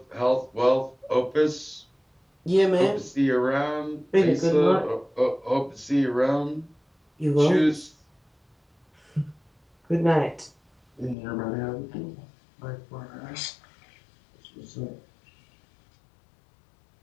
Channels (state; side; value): drops out; right; at 11.2 s